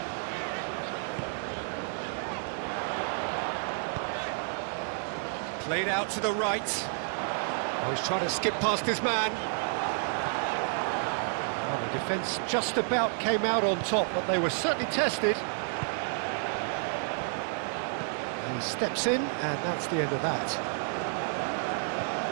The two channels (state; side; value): silent; left; 58 dB below the other